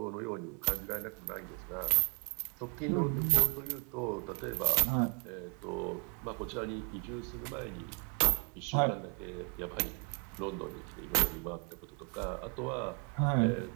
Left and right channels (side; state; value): left; quieter; 36.0 dB